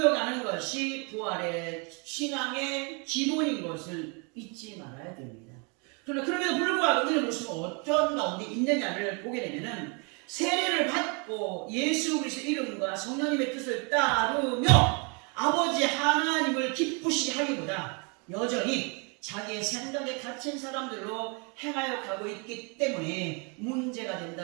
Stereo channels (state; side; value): quieter; left; 33.5 dB